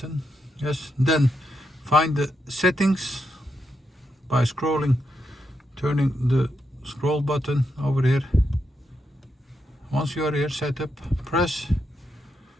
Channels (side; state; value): both; normal; correlation 0.83